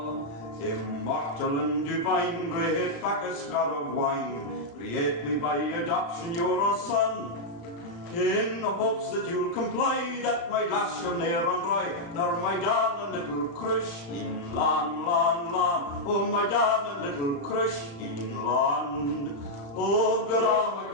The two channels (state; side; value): late; right; 35 ms